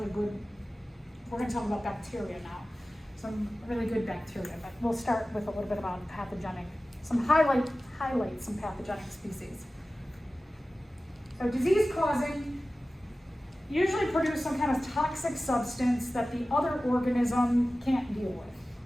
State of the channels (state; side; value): normal; both; correlation 0.96